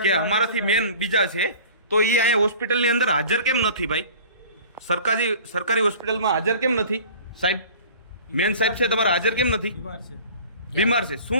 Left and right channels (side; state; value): both; inverted; correlation -0.44